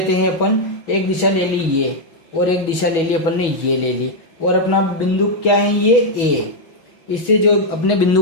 हैं अपन, एक दिशा ले ली ये और एक दिशा ले ली अपन ने ये ले ली, और अपना बिंदु क्या है ये A। इससे जो अपने बिंदु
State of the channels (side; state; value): right; late; 6.2 ms